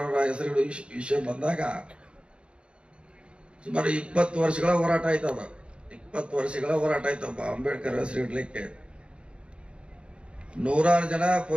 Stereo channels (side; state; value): left; late; 0.057 ms